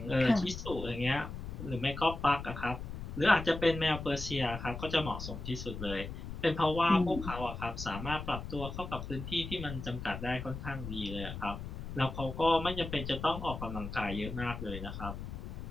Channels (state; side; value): noise; left; rumble, 8 dB below the sound